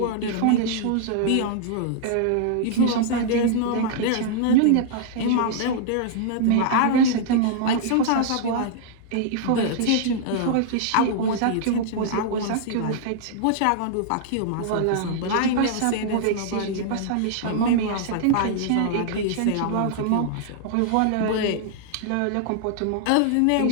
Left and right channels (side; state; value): both; different; correlation -0.01